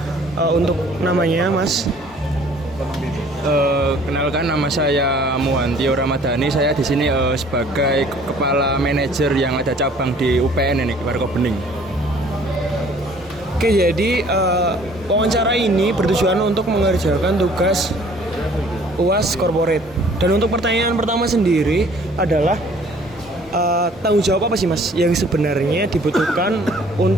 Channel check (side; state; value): both; normal; correlation 0.55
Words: untuk namanya, Mas? Kenalkan, nama saya Muhantio Ramadhani. Saya di sini sebagai kepala manajer yang ada cabang di UPN ini, Warkop-Bening. Oke, jadi wawancara ini bertujuan untuk mengerjakan tugas UAS corporate. Dan untuk pertanyaan pertama sendiri adalah tanggung jawab apa sih, Mas, yang sebenarnya dibutuhkan